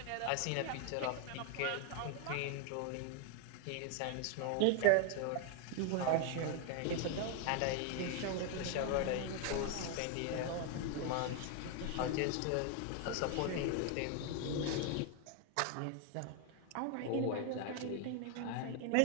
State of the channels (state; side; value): different; both; correlation 0.01